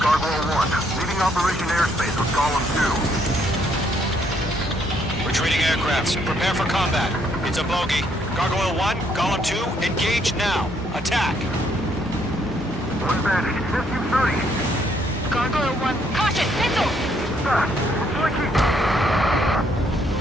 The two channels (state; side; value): normal; both; correlation 0.70